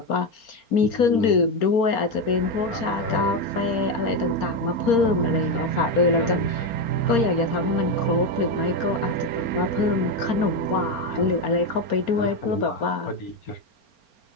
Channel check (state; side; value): late; right; 4.4 ms